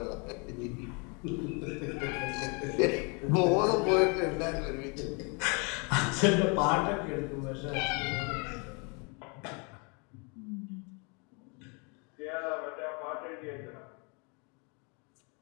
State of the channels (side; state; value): right; quieter; 33.2 dB